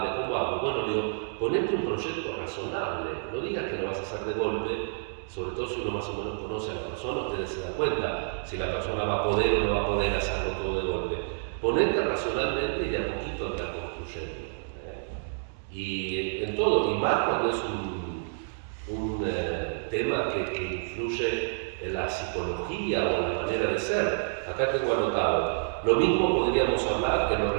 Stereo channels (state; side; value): silent; left; digital silence